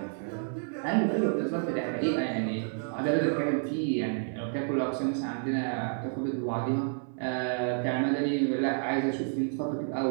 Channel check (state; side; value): silent; left; 58 dB below the other